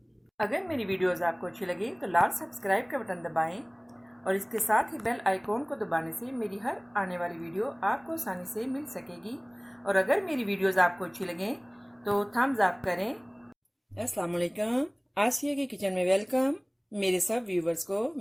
अगर मेरी वीडियोस आपको अच्छी लगी तो लाल सब्सक्राइब का बटन दबाएं और इसके साथ ही बेल आइकॉन को दबाने से मेरी हर आने वाली वीडियो आपको आसानी से मिल सकेगी। और अगर मेरी वीडियोस आपको अच्छी लगें तो थम्स अप करें। अस्सलाम वालेकुम, आसिया की किचन में वेलकम। मेरे सब व्यूवर्स को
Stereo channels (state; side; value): identical; both; correlation 1.00